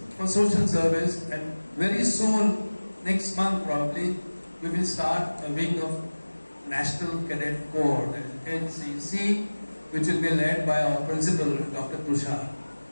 for social service, and very soon, next month probably, we will start a wing of National Cadet Corps, that is NCC, which will be led by our principal, Dr. Tushar.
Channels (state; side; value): inverted; both; correlation -1.00